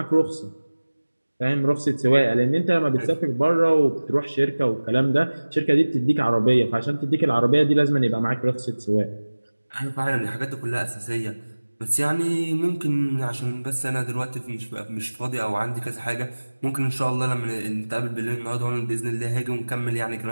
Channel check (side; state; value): both; inverted; correlation -1.00